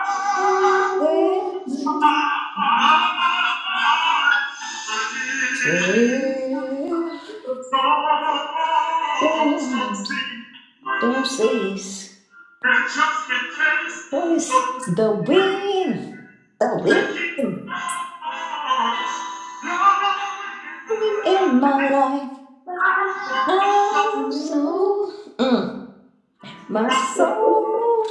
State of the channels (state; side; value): identical; both; correlation 1.00